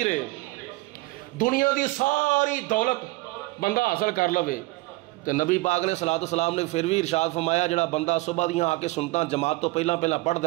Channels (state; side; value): quieter; left; 21.8 dB